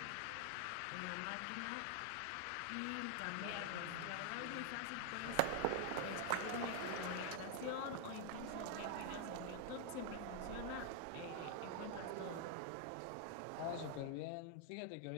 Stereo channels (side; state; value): both; different; correlation 0.00